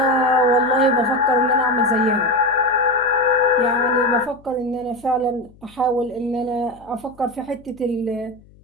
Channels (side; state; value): left; noise; hum, 27 dB below the sound